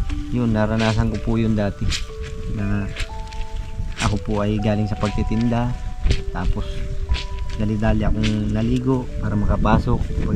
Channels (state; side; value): identical; both; correlation 1.00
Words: yun, naranasan ko po yun dati na ako po ay galing sa pagtitinda, tapos dali-dali akong naligo para makapasok.